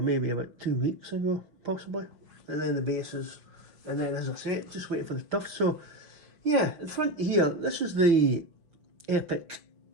about 2 weeks ago, possibly. And then the bases, and then as I say, just waiting for the tufts. So yeah, in front here, this is the epic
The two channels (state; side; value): late; left; 5.8 ms